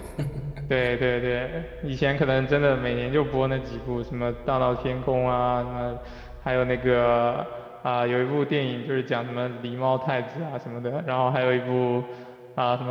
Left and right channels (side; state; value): both; identical; correlation 1.00